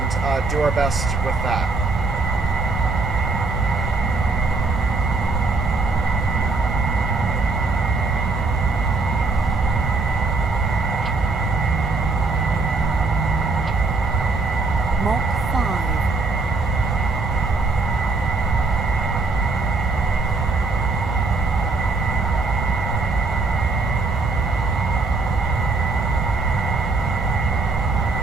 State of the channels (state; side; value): quieter; left; 3.8 dB